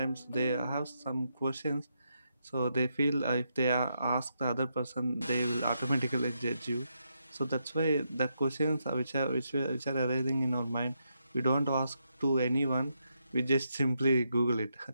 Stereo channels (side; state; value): both; inverted; correlation -0.81